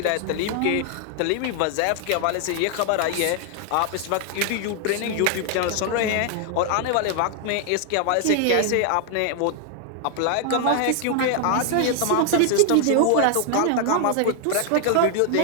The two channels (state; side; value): different; both; correlation 0.00